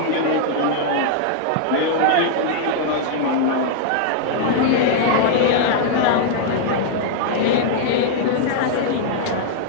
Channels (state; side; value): different; both; correlation -0.01